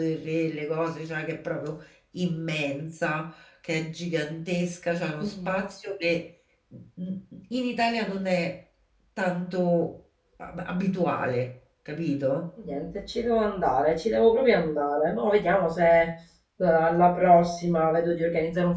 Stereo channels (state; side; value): identical; both; correlation 1.00